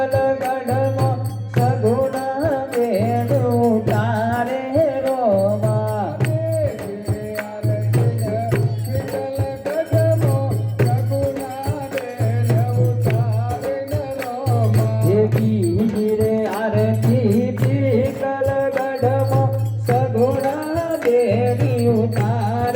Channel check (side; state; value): both; identical; correlation 1.00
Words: गढ़मो सगुना बेन उतारे रोमा रे आरती पीगल गढ़मो सगुना बेनी